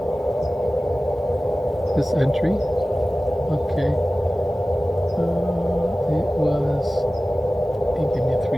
this entry. Okay. It was, he gave me a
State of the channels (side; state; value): both; normal; correlation 0.96